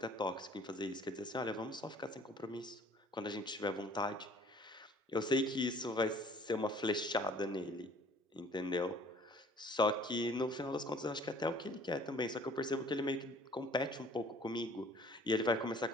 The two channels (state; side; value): normal; both; correlation 0.53